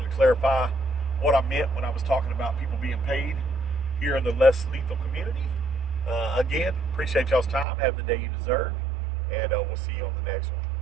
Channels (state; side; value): drops out; left; at 7.7 s